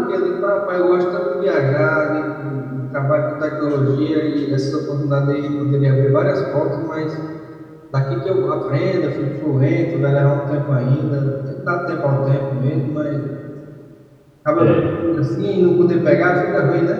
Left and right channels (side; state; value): both; identical; correlation 1.00